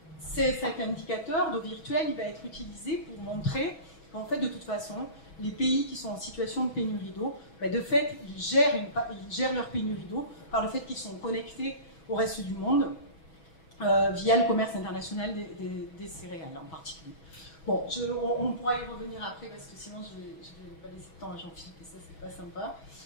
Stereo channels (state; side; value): late; right; 6.2 ms